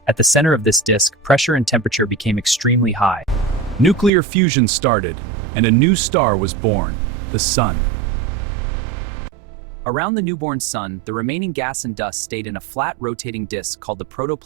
At the center of this disk, pressure and temperature became extremely high. Nuclear fusion started, and a new star was born, the Sun. Around the newborn sun, the remaining gas and dust stayed in a flat rotating disk called the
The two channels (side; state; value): left; drops out; at 4.1 s